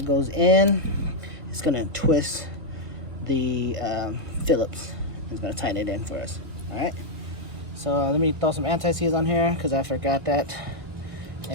goes in, it's gonna twist the Phillips. It's gonna tighten it in for us. All right. So let me throw some anti-seize on here because I forgot that.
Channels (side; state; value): left; late; 1.1 ms